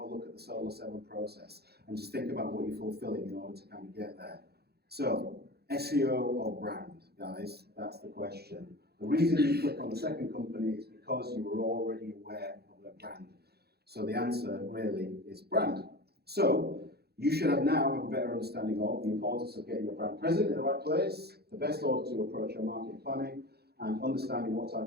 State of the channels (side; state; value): left; late; 0.46 ms